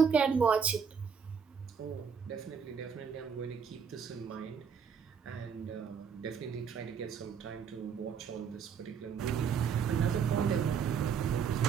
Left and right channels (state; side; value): quieter; left; 6.7 dB